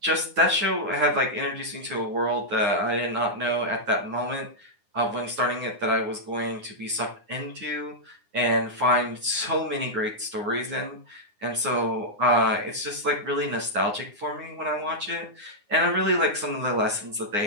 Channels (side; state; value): left; late; 9.7 ms